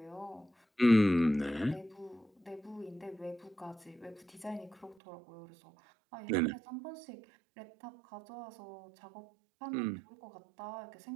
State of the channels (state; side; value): drops out; left; at 5.0 s